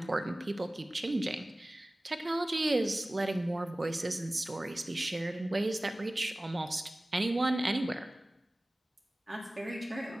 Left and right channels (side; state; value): both; normal; correlation 0.98